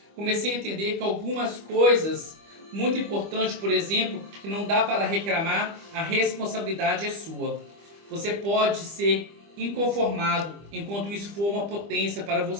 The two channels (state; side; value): late; left; 25 ms